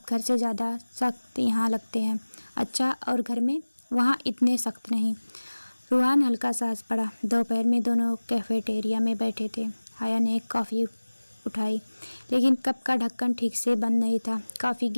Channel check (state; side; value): inverted; both; correlation -1.00